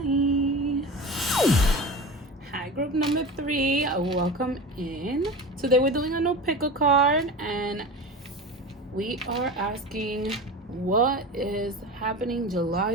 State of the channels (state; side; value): normal; both; correlation 0.30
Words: Hi, group number 3. Welcome in. Today we're doing a no pick a card, and we are asking what is happening